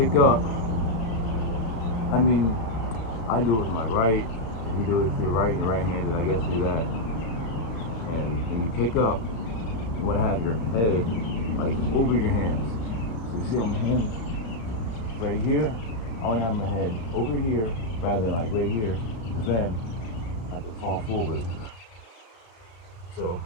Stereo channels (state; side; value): late; right; 35 ms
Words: up, I do it with my right You do it if you're right and you're right-handed, I guess do that. And when you kick up, you want to have your head like over your hands. So you see on my hands right here, I want to have my head over here rather than like right here, because then I can fall forward. So